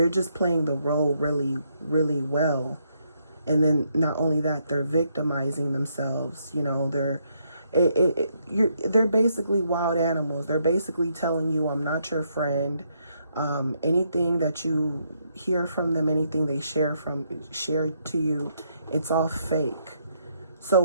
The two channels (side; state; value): both; inverted; correlation -0.75